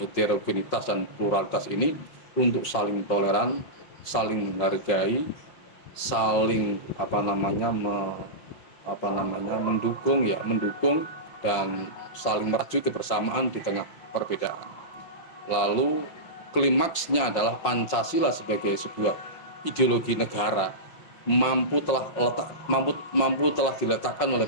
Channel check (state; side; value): late; right; 5.5 ms